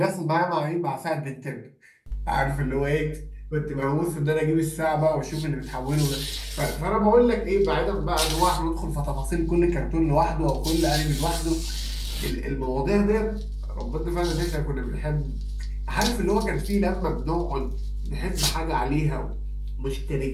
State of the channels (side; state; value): both; identical; correlation 1.00